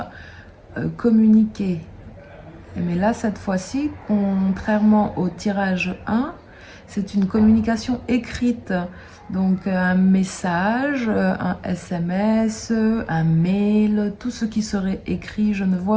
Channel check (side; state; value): both; identical; correlation 1.00